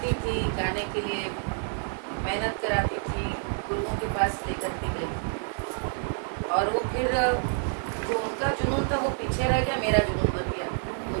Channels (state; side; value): silent; left; 59 dB below the other